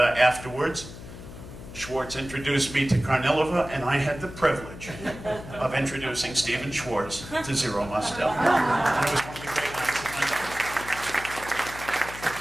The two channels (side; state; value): left; noise; hum, 14 dB below the sound